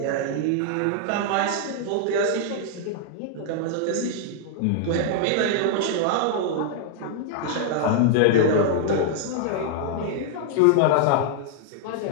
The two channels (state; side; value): different; both; correlation 0.00